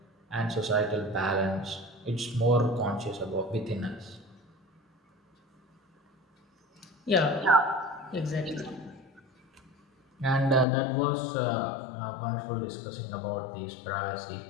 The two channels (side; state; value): right; drops out; at 10.7 s